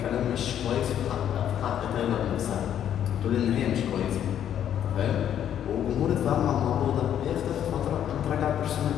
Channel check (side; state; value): right; quieter; 10.0 dB